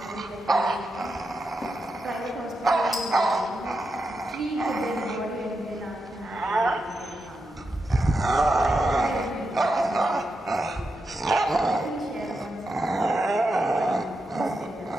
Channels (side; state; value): both; normal; correlation 0.87